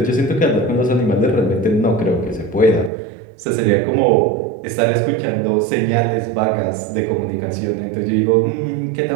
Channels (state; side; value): drops out; left; at 2.9 s